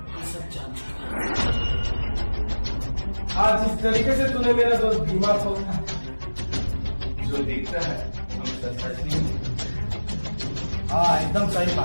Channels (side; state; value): both; inverted; correlation -1.00